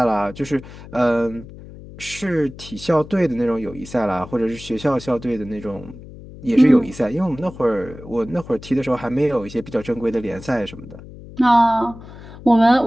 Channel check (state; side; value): noise; left; hum, 16 dB below the sound